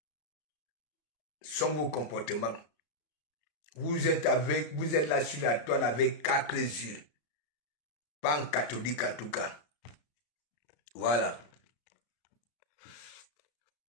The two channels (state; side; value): late; right; 33 ms